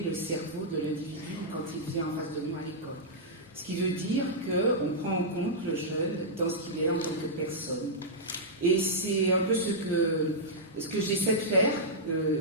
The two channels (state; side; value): normal; both; correlation -0.11